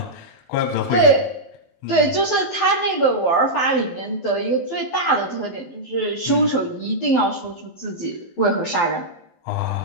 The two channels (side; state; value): right; late; 12 ms